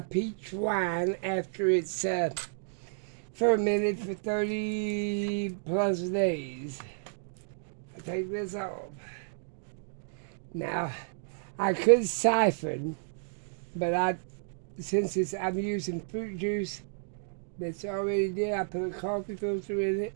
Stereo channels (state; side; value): silent; left; digital silence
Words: wine after it's fermented for 30 plus days. I take this off. Now, I could siphon, but since I'm using fruit juice that's already there, I put a coffee filter in it.